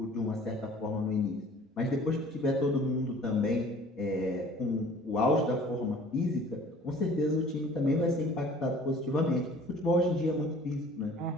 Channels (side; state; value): both; normal; correlation 0.50